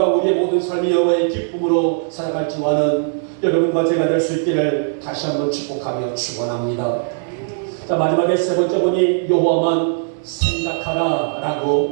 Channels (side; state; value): left; silent; digital silence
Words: 우리의 모든 삶이 여호와의 기쁨으로 살아갈 줄 아는 여러분과 제가 될 수 있기를 다시 한번 축복하며 축원합니다. 자, 마지막에 세 번째 본이 여호와만 생각하라